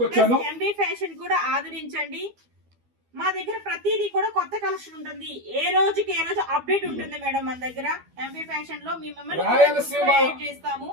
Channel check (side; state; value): left; late; 12 ms